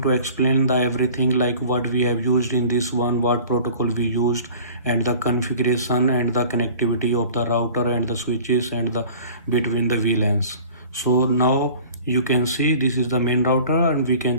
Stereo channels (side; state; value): both; inverted; correlation -0.45